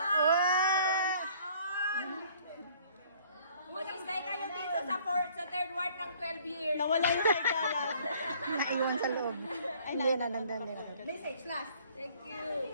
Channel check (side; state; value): both; inverted; correlation -0.57